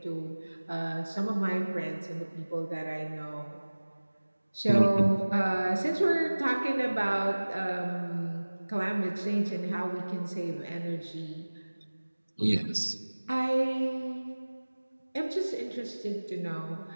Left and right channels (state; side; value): inverted; both; correlation -1.00